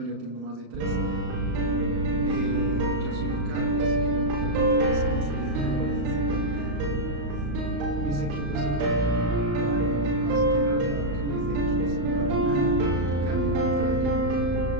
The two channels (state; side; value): late; left; 35 ms